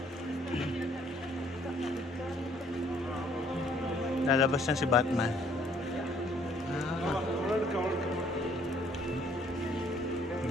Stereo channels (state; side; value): normal; both; correlation 0.62